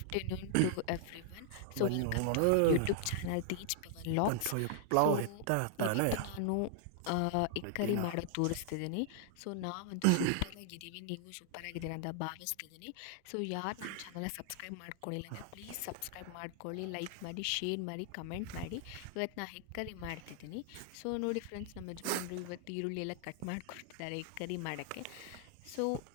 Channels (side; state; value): both; different; correlation 0.00